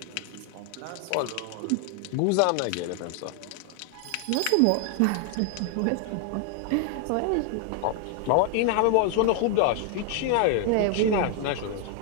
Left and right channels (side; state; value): both; different; correlation 0.00